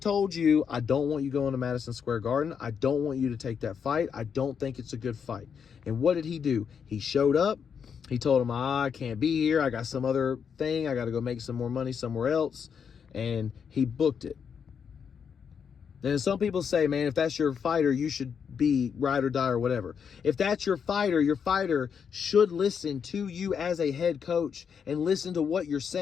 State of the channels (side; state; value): right; quieter; 6.9 dB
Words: you, I don't want you going to Madison Square Garden. I don't want you to take that fight. I don't think it's a good fight. And what did he do? He showed up. He told him, I can't be here. I got some other thing. I got to go make some more money somewhere else. And he booked it. Then some people say, man, if that's your fighter, you should be ride or die or whatever. If that's your fighter should listen to you as a head coach and listen to what you're